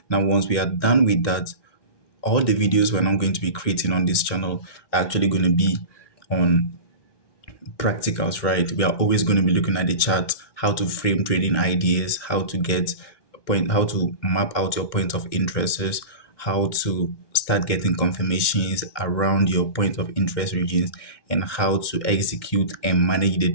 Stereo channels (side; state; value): right; late; 1.2 ms